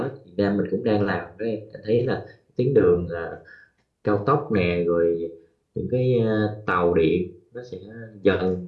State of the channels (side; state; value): both; identical; correlation 1.00